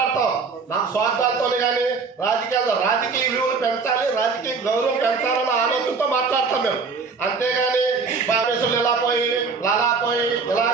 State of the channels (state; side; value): quieter; left; 4.7 dB